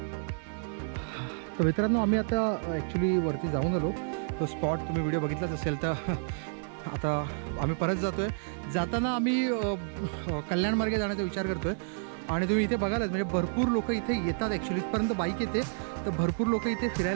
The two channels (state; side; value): silent; left; digital silence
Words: तर मित्रांनो, आम्ही आता ॲक्च्युली वरती जाऊन आलो. तो स्पॉट तुम्ही व्हिडिओ बघितलाच असेल. तर आता आम्ही परत जातो आहे. जाताना आम्ही कल्याणमार्गे जाण्याचा विचार करतो आहे. आणि तुम्ही इथे बघालच म्हणजे भरपूर लोक इथे येतात. ॲक्च्युली इथपर्यंत बाईक येते, तर भरपूर लोक इथे